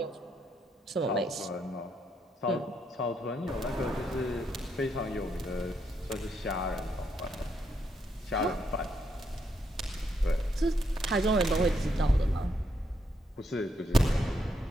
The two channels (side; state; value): both; normal; correlation 0.77